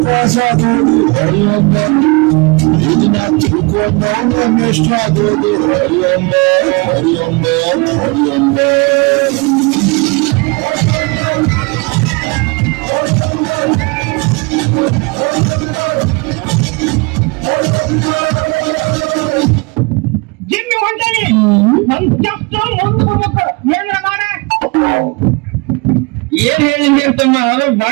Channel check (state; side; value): quieter; left; 28.9 dB